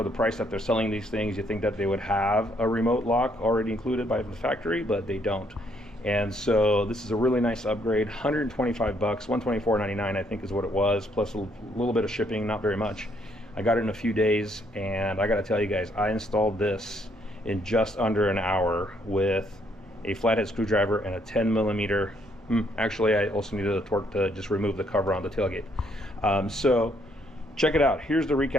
the price that they're selling these things, you think that they would have a remote lock already included by the factory, but they don't. And so this is a really nice upgrade. 125 bucks, 124.99 I think is what it was, plus a little bit of shipping, not very much. I got it in a few days, and I gotta tell you guys, I installed this in just under an hour with a flathead screwdriver and a 10mm. Actually, I also needed a torque to just remove the cover on the tailgate. So check it out. Here's the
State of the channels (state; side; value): normal; both; correlation 0.70